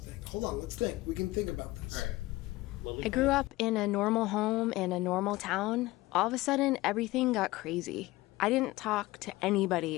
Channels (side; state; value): right; quieter; 19.1 dB